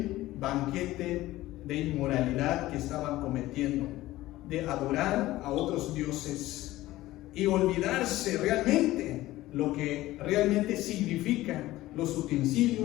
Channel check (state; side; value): quieter; right; 16.6 dB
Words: banquete de inmoralidad que estaban cometiendo, de adorar a otros dioses y olvidarse realmente lo que realmente significa los